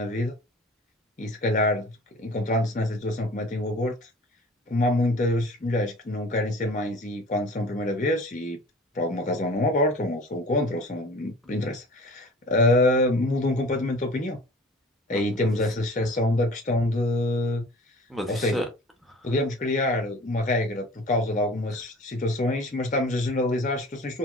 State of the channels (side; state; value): both; normal; correlation 0.43